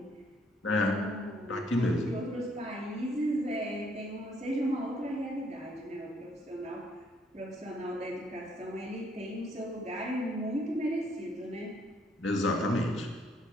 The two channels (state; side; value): normal; both; correlation 0.68